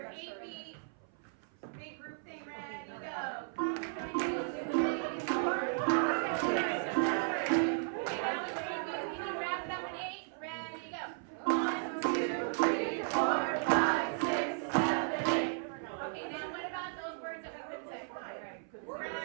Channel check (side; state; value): left; silent; 54 dB below the other